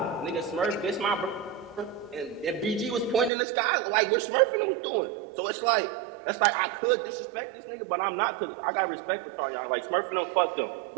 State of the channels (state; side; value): drops out; left; at 3.3 s